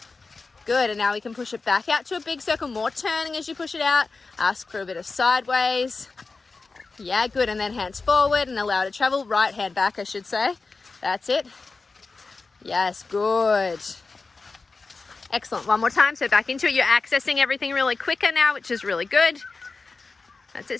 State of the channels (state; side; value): quieter; right; 4.0 dB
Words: Good, and now we can push it back out to a big circle, more turning as you push it out. Ask for a bit of sideways. Yeah, good, and then hands forward and allow it to travel. Right hand back, I should say. That's it. Yes, good. Excellent, one more time, so back into it. You're accessing everything really quicker now, which is really good. That's